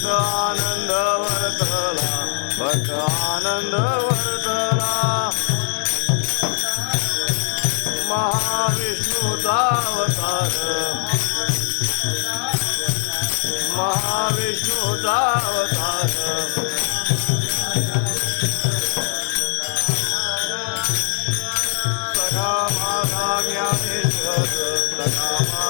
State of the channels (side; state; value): right; silent; digital silence